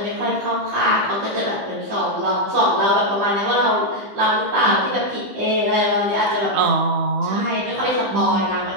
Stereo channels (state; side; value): late; left; 15 ms